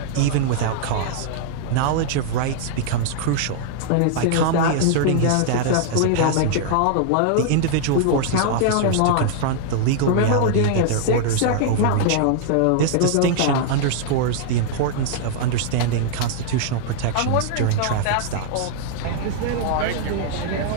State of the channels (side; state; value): both; different; correlation -0.01